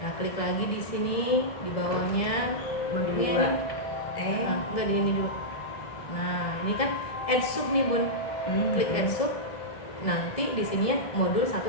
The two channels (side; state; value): right; late; 1.7 ms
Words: Nah, klik lagi di sini di bawahnya modul 2. Enggak di ini dulu. Nah, ini kan add sub nih, Bun. Klik add sub. Nanti di sininya modul